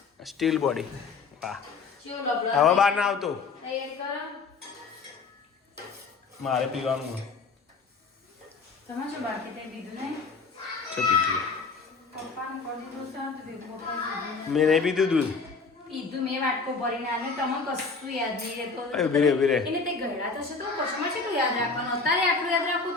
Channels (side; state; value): right; quieter; 4.6 dB